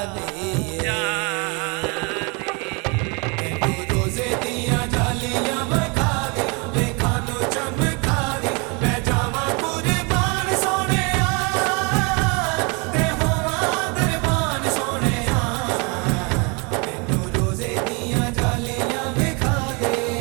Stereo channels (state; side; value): quieter; left; 31.2 dB